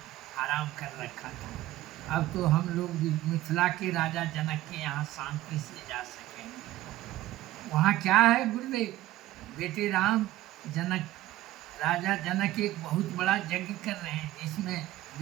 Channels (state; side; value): quieter; left; 15.6 dB